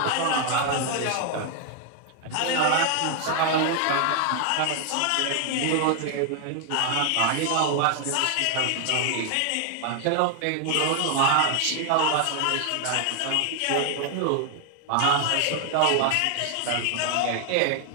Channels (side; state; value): both; different; correlation 0.00